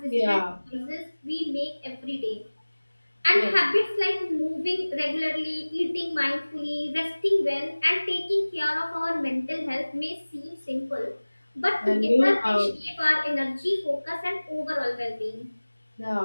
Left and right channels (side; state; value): both; inverted; correlation -1.00